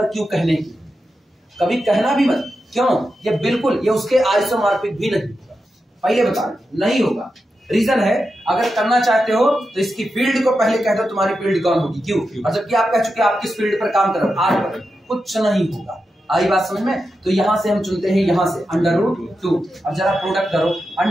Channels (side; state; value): both; normal; correlation 0.89